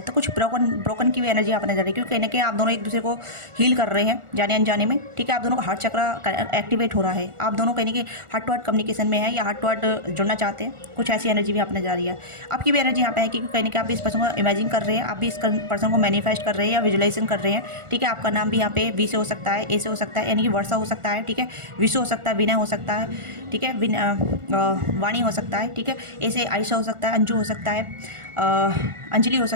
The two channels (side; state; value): left; late; 1.4 ms